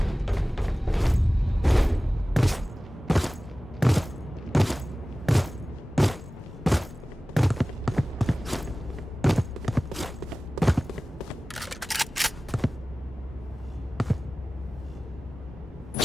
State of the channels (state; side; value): normal; both; correlation 0.97